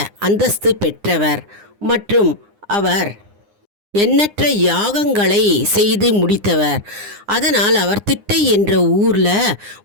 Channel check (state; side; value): late; left; 9.8 ms